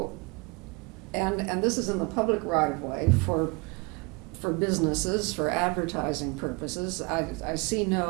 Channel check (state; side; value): quieter; left; 28.7 dB